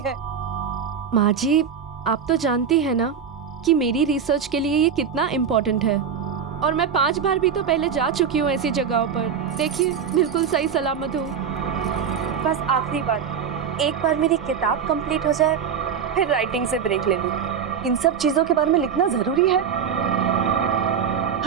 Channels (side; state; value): left; quieter; 7.3 dB